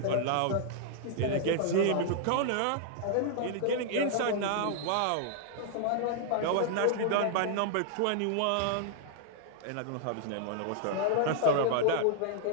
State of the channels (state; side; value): different; both; correlation -0.01